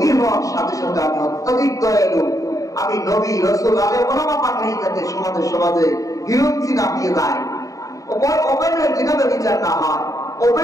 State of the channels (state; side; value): late; right; 0.16 ms